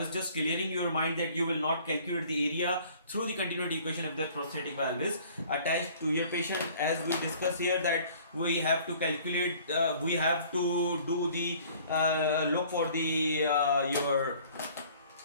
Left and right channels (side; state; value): both; inverted; correlation -0.53